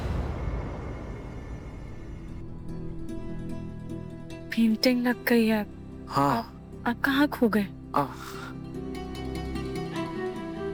पेंटिंग लग गई है। हाँ, आप कहाँ खो गए?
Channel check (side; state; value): both; identical; correlation 1.00